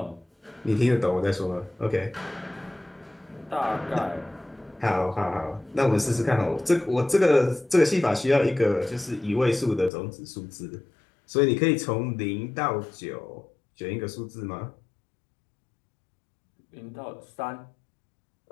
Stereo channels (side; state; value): right; drops out; at 9.9 s